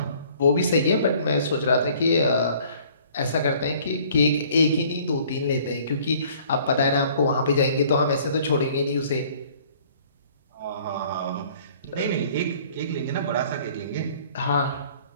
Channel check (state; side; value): inverted; both; correlation -0.55